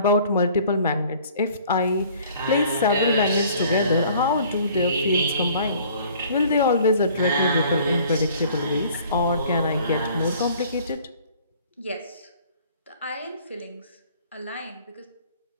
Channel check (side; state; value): both; inverted; correlation -0.53